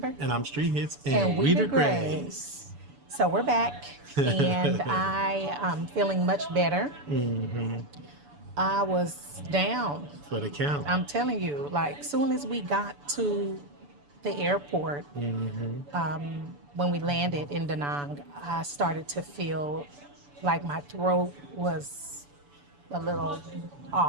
And I'm Street Hits. And we the DeGrays. Grays. So we're back, and I am feeling much better. I was down. For the count. I'm telling you, like, soon as we got to the airport, when we landed in Da Nang, I started to feel like my throat was a little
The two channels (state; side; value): late; left; 6.9 ms